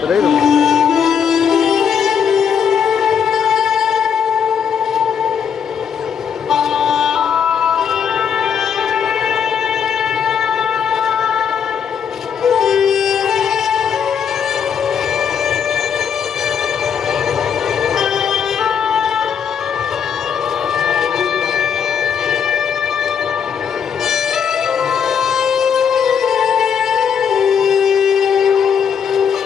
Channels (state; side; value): quieter; right; 7.4 dB